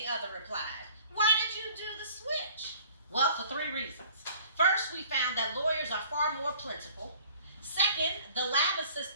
other replied. Why did you do the switch? Well, for 3 reasons. First, we found that lawyers are far more plentiful. Second, the lab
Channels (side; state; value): both; inverted; correlation -0.50